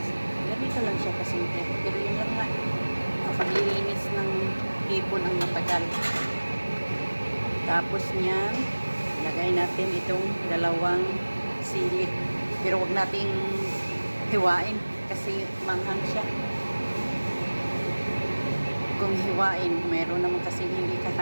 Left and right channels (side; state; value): both; inverted; correlation -1.00